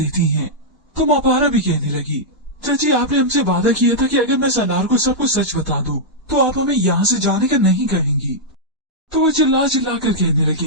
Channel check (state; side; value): normal; both; correlation -0.07